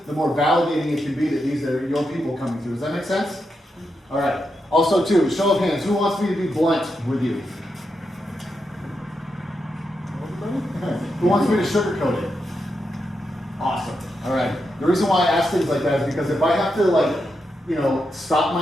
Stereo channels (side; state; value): both; normal; correlation 0.85